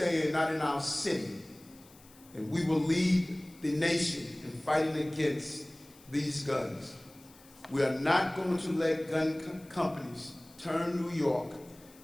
not in our city, and we will lead the nation in fighting against these guns. We are not going to let gun companies turn New York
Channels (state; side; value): noise; left; hiss, 25 dB below the sound